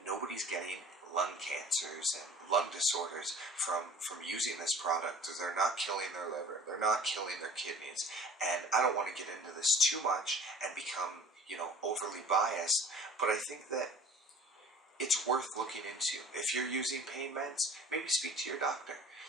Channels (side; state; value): both; normal; correlation 0.46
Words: nobody's getting lung cancers and lung disorders from using this product. They're not killing their liver. They're not killing their kidneys. And I don't want to get into this too much and become, you know, overly biased, but I think that it's worth looking into. If you're using pain meds, maybe speak to your doctor.